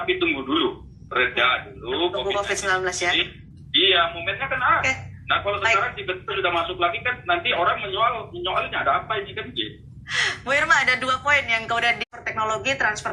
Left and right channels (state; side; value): identical; both; correlation 1.00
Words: tunggu dulu. Reda dulu COVID-19 ya. Iya, momennya kan ada. Okay. Nah, kalau sekarang tiba-tiba sudah masuk lagi kan nanti orang menyoalnya ada apa ini kan gitu. Bu Irma, ada 2 poin yang kemudian di teknologi transfer